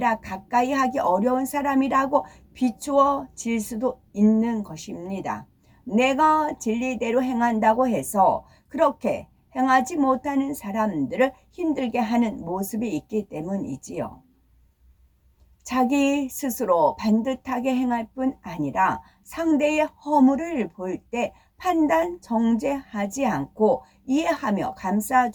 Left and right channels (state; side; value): identical; both; correlation 1.00